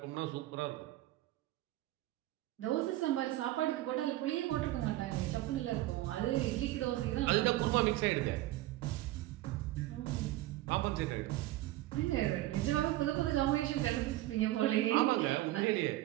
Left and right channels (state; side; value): quieter; left; 16.2 dB